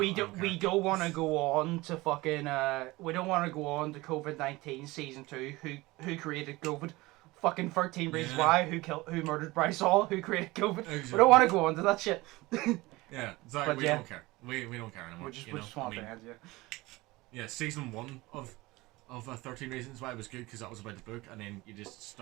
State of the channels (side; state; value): left; quieter; 20.9 dB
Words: don't want to go on to fucking we don't want to go on to COVID-19 season 2. Who created COVID? Fucking 13 Reasons Why. Who murdered Bryce Hall? Who created COVID? Exactly. We don't want to go on to that shit. Yeah, it's like we don't care. We don't care anymore. We just want to end, yeah, season 1 of 13 Reasons Why was good because that was about the book, and then you just